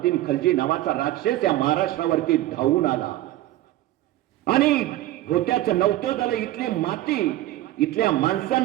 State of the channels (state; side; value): quieter; left; 15.3 dB